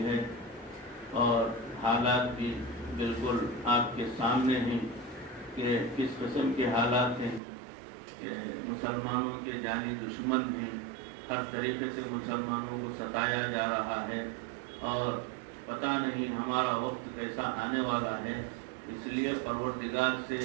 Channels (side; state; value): left; drops out; at 7.4 s